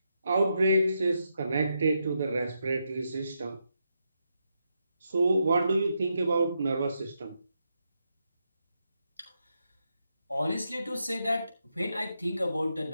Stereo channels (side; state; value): both; inverted; correlation -0.83